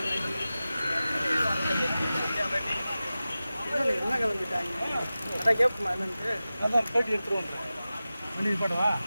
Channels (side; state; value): both; inverted; correlation -0.95